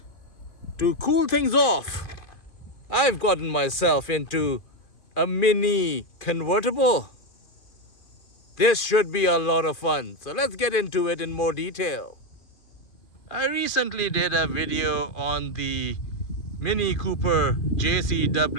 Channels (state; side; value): late; right; 2.4 ms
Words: to cool things off, I've gotten myself into a mini convertible. This should be a lot of fun, so let's get into it in more detail. I recently did a video on the Mini Cooper